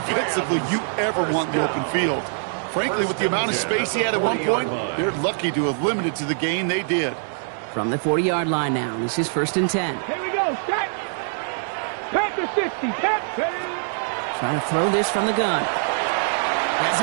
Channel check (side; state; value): left; silent; digital silence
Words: you ever want in the open field. Frankly, with the amount of space he had at one point, they're lucky to have limited to the gain they did. From the 40-yard line now, this is 1st and 10. Here we go. Set. Panther 60. Trying to throw this from the gun. Has